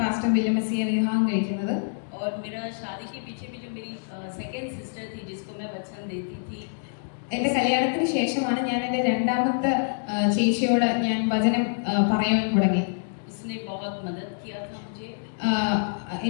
വില്യം മെസ്സിയെ വിവാഹം കഴിക്കുന്നത്. और मेरा शादी के पीछे भी जो मेरी सेकंड सिस्टर थी जिसको मैं वचन देती थी, എൻ്റെ കല്യാണത്തിന് ശേഷമാണ് ഞാൻ എൻ്റെ രണ്ടാമത്തെ ചേച്ചിയോട് ഞാൻ വചനം പറയാൻ തുടങ്ങി. उसने बहुत मदद किया था मुझे.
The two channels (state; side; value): silent; right; digital silence